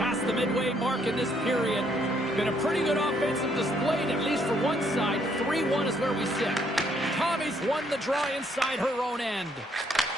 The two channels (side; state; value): both; normal; correlation 0.70